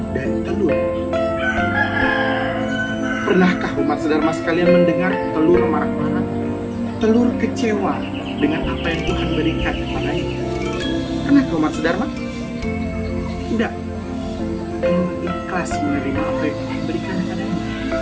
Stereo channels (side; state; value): both; identical; correlation 1.00